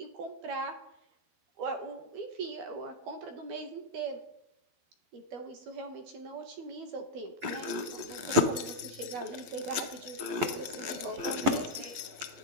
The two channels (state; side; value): late; left; 11 ms